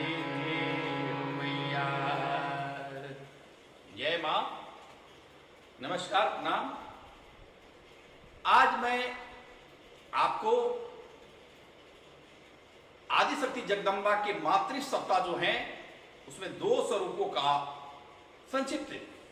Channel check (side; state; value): both; identical; correlation 1.00